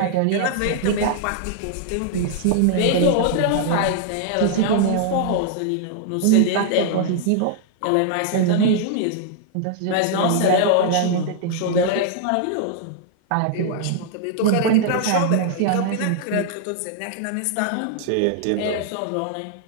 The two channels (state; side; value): different; both; correlation -0.01